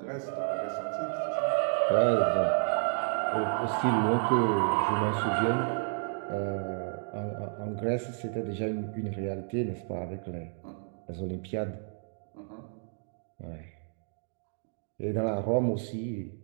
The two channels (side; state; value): left; silent; 57 dB below the other